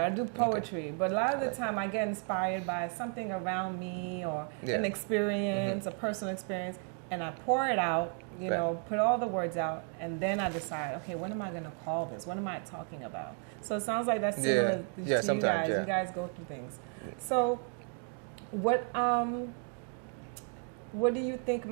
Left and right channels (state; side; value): quieter; left; 38.9 dB